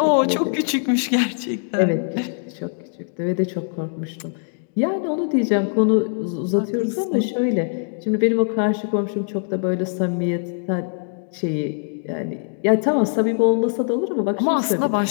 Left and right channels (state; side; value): silent; right; digital silence